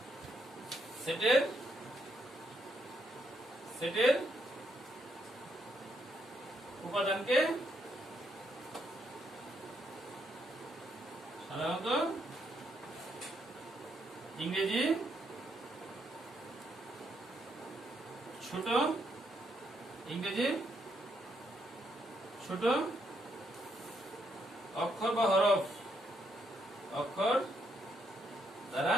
সেটের উপাদানকে সাধারণত ইংরেজি ছোট অক্ষর বা অক্ষর দ্বারা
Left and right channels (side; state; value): both; normal; correlation 0.76